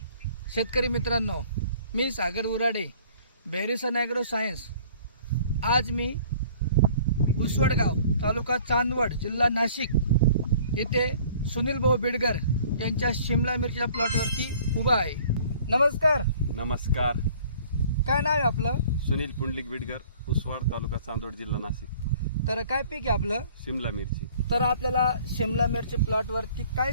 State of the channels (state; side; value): inverted; both; correlation -0.53